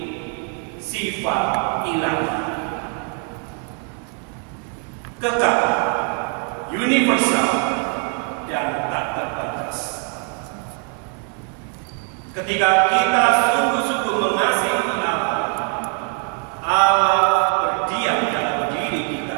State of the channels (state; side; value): quieter; left; 36.6 dB